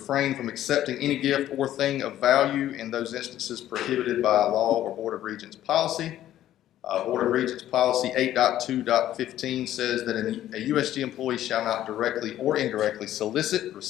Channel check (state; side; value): quieter; right; 12.7 dB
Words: from accepting any gift or thing of value in those instances prohibited by law or Board of Regents policy. Board of Regents policy 8.2.15 says that a USG employee shall not directly or indirectly solicit,